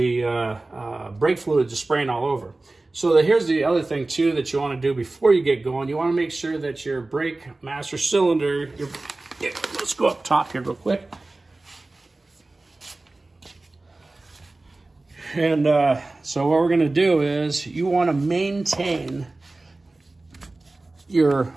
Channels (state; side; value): quieter; left; 3.1 dB